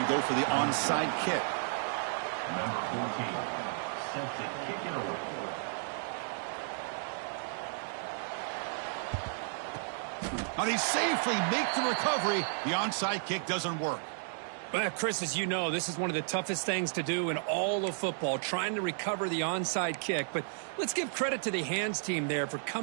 go for the onside kick. Number 14, set to kick it away. Now they safely make the recovery. The onside kick doesn't work. Well, Chris, as you know, this is one of the toughest things to do in all of football, trying to recover the onside kick. But let's give credit to the hands team there for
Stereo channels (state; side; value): silent; left; digital silence